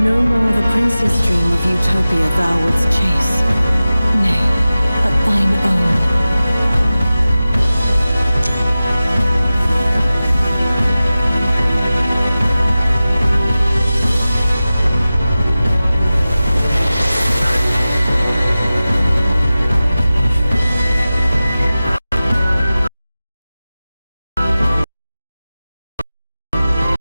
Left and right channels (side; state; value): both; inverted; correlation -0.96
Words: No more the prince's dream of utopia thou wouldst chase. Nay, but thine own.